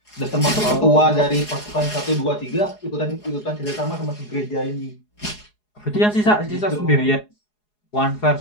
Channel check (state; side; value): late; right; 4.8 ms